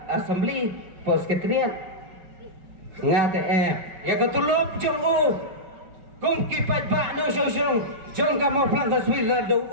Assembly Post Ketrian ngate ya ketulop jong kum kipat ba no song jong ka mo plan taswir la do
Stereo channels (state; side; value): late; left; 5.3 ms